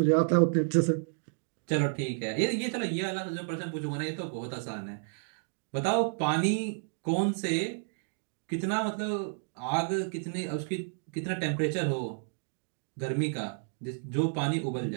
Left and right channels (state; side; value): silent; left; 57 dB below the other